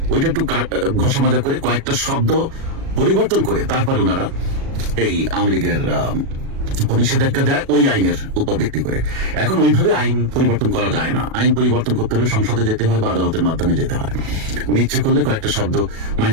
ওইটা একটু ঘষা মাজা করে কয়েকটা শব্দ পরিবর্তন করে তারপর ওনারা এই আওয়ামী লীগের নিষেধাজ্ঞা দেয় ওই আইনের উপর ভিত্তি করে। এখন ওইভাবে আইন পরিবর্তন করা যায় না। আইন পরিবর্তন করতে হলে সংসদে যেতে হয় বা আদালতের মাধ্যমে যেতে হয়। ইচ্ছে করলে কয়েকটা শব্দ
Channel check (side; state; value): left; late; 37 ms